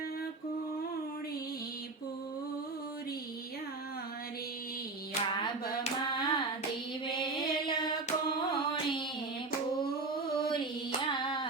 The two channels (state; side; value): quieter; left; 3.6 dB